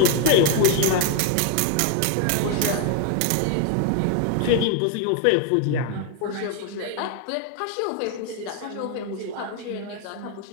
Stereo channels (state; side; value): different; both; correlation 0.01